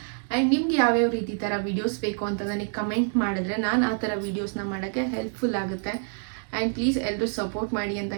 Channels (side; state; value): left; silent; 60 dB below the other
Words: ಆ್ಯಂಡ್ ನಿಮ್ಗೆ ಯಾವ್ಯಾವ ರೀತಿ ಥರ ವೀಡಿಯೋಸ್ ಬೇಕು ಅಂತ ನನಗೆ ಕಮೆಂಟ್ ಮಾಡಿದ್ರೆ ನಾನು ಆ ಥರ ವೀಡಿಯೋಸ್ನ ಮಾಡೋಕ್ಕೆ ಹೆಲ್ಪ್ಫುಲ್ ಆಗುತ್ತೆ. ಆ್ಯಂಡ್ ಪ್ಲೀಸ್ ಎಲ್ಲರೂ ಸಪೋರ್ಟ್ ಮಾಡಿ ಅಂತ